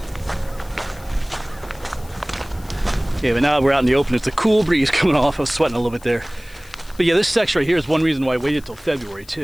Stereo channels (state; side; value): noise; left; hiss, 24 dB below the sound